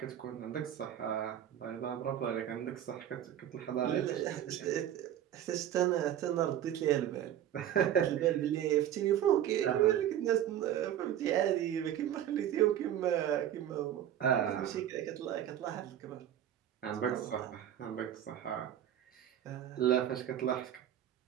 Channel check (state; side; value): quieter; left; 11.0 dB